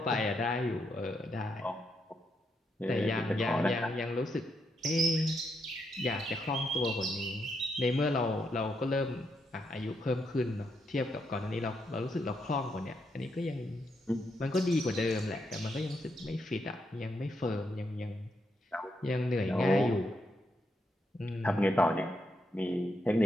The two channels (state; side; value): normal; both; correlation 0.80